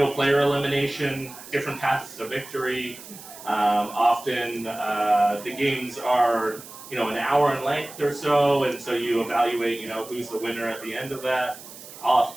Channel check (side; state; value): right; noise; hiss, 16 dB below the sound